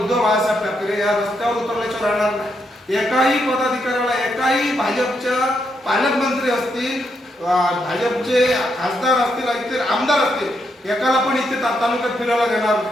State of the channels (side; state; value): both; normal; correlation 0.79